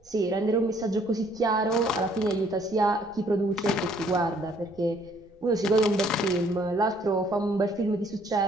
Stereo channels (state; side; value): noise; right; rumble, 28 dB below the sound